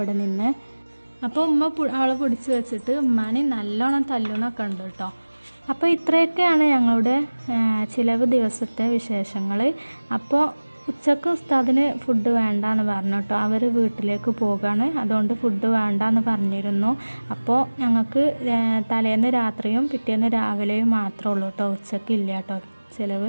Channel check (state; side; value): inverted; both; correlation -1.00